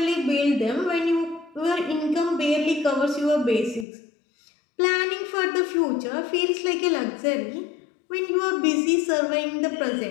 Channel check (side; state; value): right; drops out; at 3.9 s